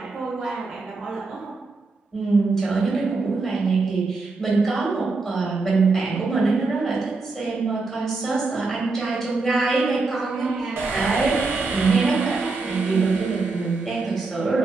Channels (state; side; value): quieter; left; 3.8 dB